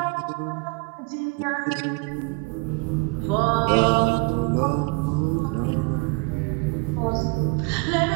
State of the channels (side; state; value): left; quieter; 29.2 dB